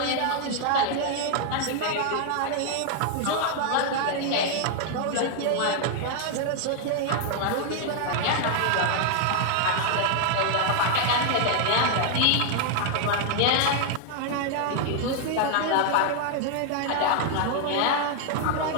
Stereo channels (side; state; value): both; different; correlation 0.00